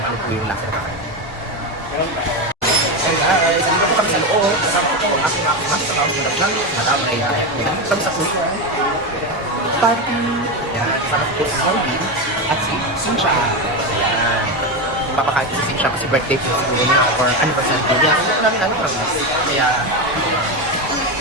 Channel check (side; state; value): both; normal; correlation 0.14